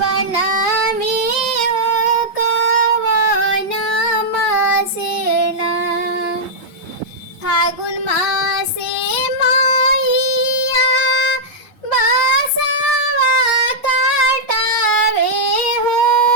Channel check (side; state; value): both; normal; correlation -0.09